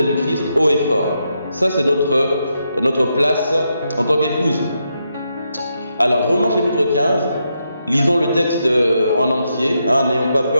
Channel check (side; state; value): both; inverted; correlation -0.82